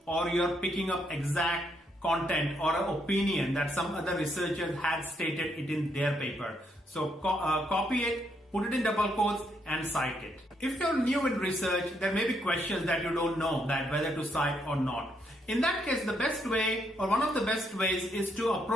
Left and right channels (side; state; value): both; normal; correlation 0.75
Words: or you're picking up exact content or an opinion that some other researcher had stated it in their paper. So copy it, put it in double quotes and cite it. If you're new in research, there may be questions that you don't know that whether to cite or not. In that case, the best way or one of the best ways is to